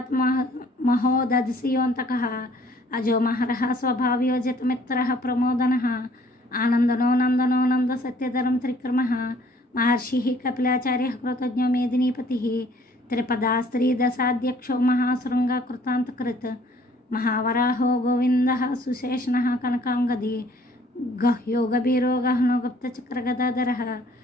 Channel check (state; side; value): normal; both; correlation 0.58